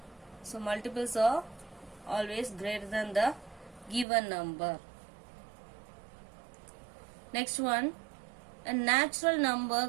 So multiples are always greater than the given number. Next one, a natural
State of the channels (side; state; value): left; drops out; at 4.0 s